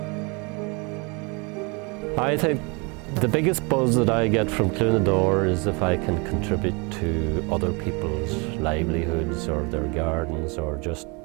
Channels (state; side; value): quieter; left; 30.0 dB